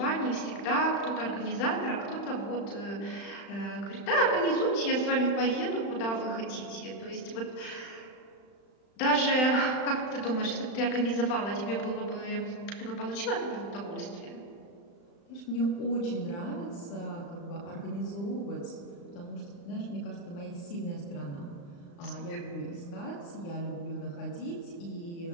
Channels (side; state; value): right; late; 35 ms